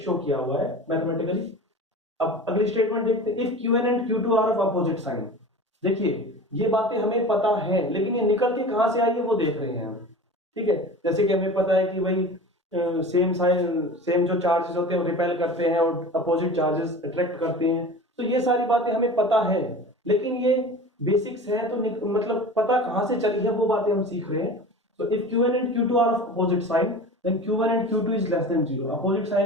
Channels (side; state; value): both; normal; correlation 0.36